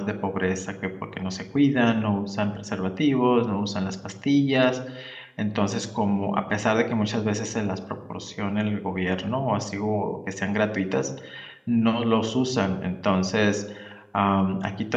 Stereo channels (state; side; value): identical; both; correlation 1.00